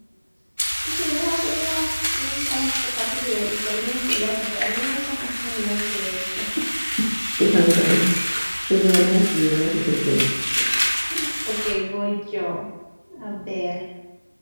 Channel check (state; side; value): inverted; both; correlation -1.00